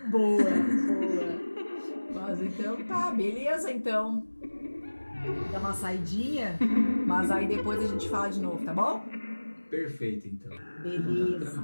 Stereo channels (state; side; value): inverted; both; correlation -1.00